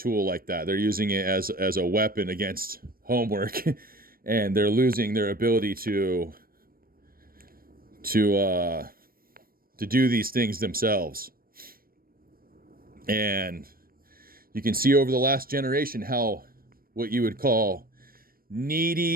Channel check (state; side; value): late; left; 0.43 ms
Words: like that. They're using it as a weapon against homework, and they're losing their ability to do these things themselves. And you can see over the last generation how what you would call